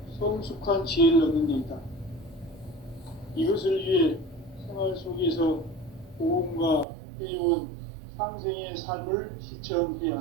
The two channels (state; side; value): drops out; left; at 6.9 s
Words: 성숙한 지혜를 얻는 데 있다. 이것을 위해 생활 속에서 고음과 회원, 상생의 삶을 실천해야